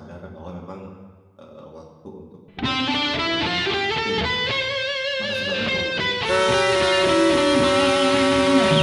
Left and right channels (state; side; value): identical; both; correlation 1.00